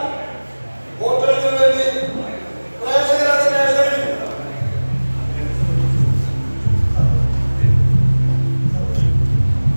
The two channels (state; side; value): inverted; both; correlation -1.00